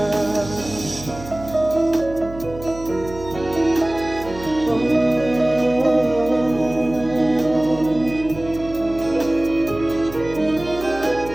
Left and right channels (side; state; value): right; noise; hum, 14 dB below the sound